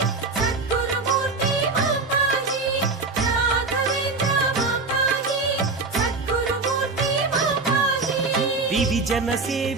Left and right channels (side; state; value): left; quieter; 3.9 dB